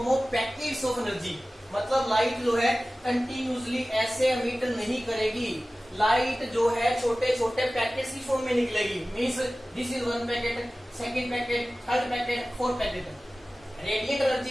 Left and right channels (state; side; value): normal; both; correlation 0.97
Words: of packets of energy. मतलब लाइट जो है कंटिन्यूसली ऐसे एमिट नहीं करेगी. लाइट जो है छोटे छोटे पैकेट्स की फॉर्म में निकलेगी. Means this is one packet, second packet, third packet, fourth packet. Radiant